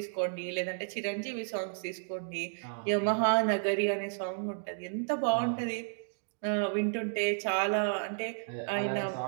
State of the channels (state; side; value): silent; left; digital silence